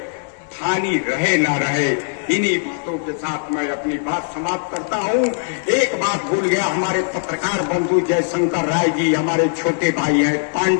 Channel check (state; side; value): silent; right; digital silence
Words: ठानी रहे ना रहे। इन्हीं बातों के साथ मैं अपनी बात समाप्त करता हूँ। एक बात भूल गया, हमारे पत्रकार बंधु जयशंकर राय जी हमारे छोटे भाई हैं,